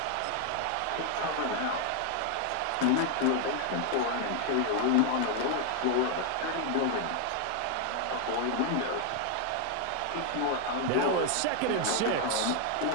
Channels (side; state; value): both; different; correlation 0.01